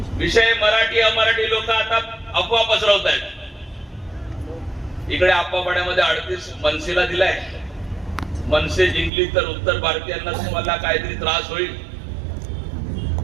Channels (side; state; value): left; drops out; at 9.1 s